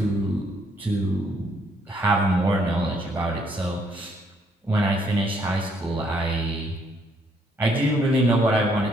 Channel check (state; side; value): normal; both; correlation 0.69